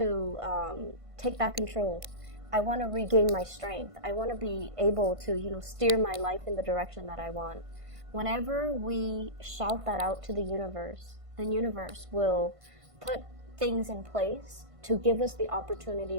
take back control. I want to regain my strength. I want to be able to, steer my life in the direction that I want. Whenever we shout that out to the universe will put things in place to give us the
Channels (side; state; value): left; late; 1.5 ms